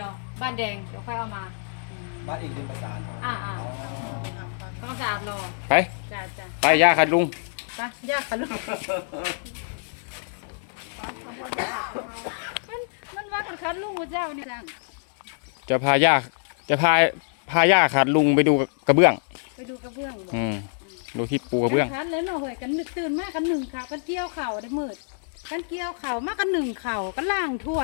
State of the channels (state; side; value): silent; right; 61 dB below the other